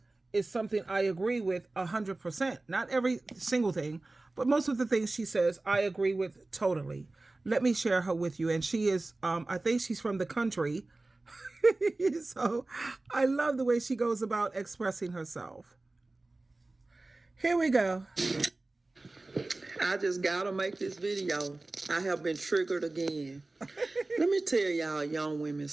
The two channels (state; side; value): quieter; left; 3.1 dB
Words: is something I agree with 100%. Not every single thing, but most of the things she says I agree with totally. Let me share her with you. And she is, I think she's from the country. So I love the way she goes about expressing herself. Here we go. I just gotta make this video. I have been triggered again. Let me tell y'all young women